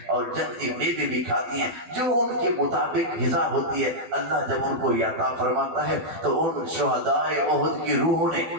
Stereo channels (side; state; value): left; late; 12 ms